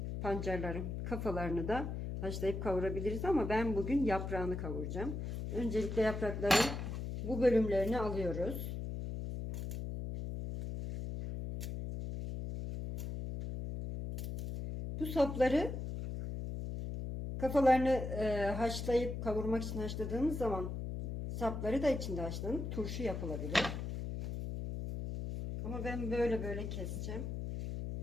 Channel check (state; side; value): noise; left; hum, 5 dB below the sound